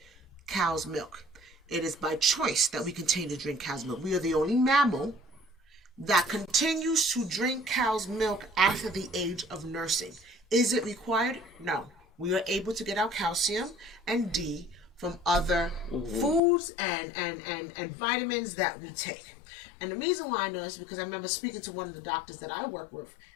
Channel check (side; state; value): right; drops out; at 16.4 s